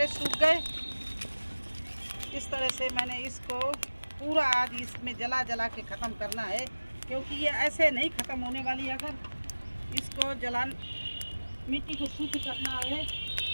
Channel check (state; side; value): inverted; both; correlation -1.00